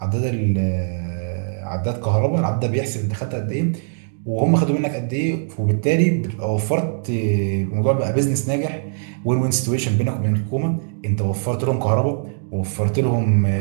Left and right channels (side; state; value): left; silent; digital silence